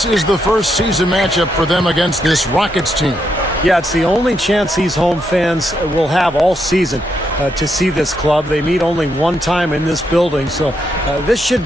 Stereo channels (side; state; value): both; normal; correlation 0.79